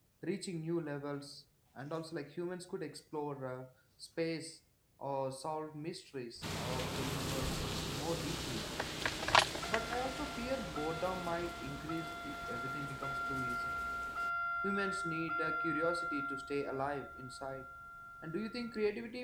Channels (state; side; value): identical; both; correlation 1.00